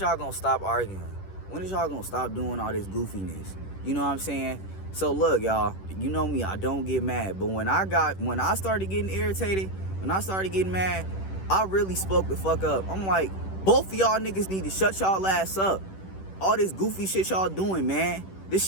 gonna stop arguing? When is y'all gonna stop doing all this goofiness? You know what I'm saying? So look, y'all, you know me, I don't get mad. But when I started getting irritated, when I started getting mad, I really spoke the fuck up. I'm like, both of y'all niggas need to shut y'all ass up. All this goofy shit y'all doing, man. This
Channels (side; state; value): right; late; 10 ms